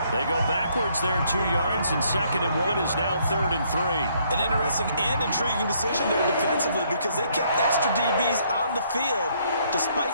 They go backwards there 2 yards, and 2nd and 1 is now 3rd and 3. An interesting and intriguing decision there defensively because they kept extra DBs on the field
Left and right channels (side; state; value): both; inverted; correlation -0.68